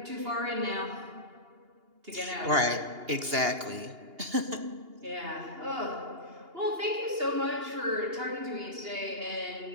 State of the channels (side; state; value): left; late; 2.8 ms